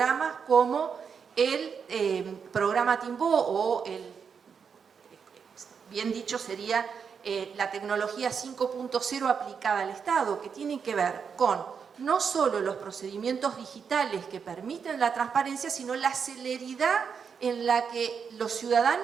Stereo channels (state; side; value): quieter; left; 6.4 dB